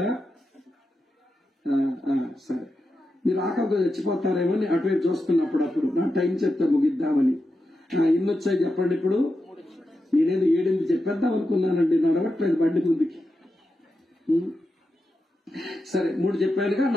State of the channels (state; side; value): normal; both; correlation 0.89